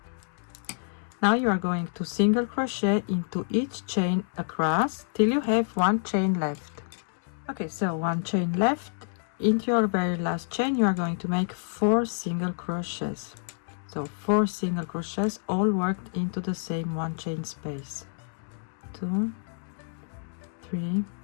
Now you are going to single crochet into each chain across till you have one chain left. Okay, so one chain left. Into your very last chain you are going to make 4 single crochets. So 4 single crochets all worked into the same one chain space. 2, 3,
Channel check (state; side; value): silent; right; digital silence